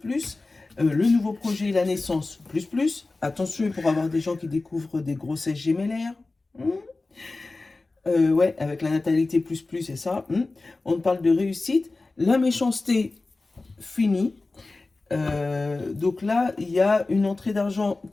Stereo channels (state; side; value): quieter; right; 3.4 dB